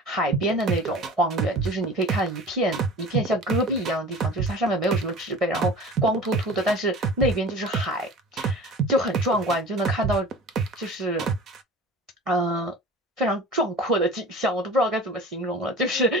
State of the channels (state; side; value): normal; both; correlation 0.39